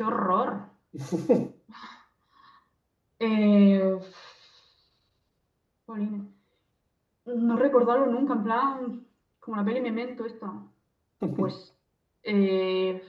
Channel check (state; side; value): identical; both; correlation 1.00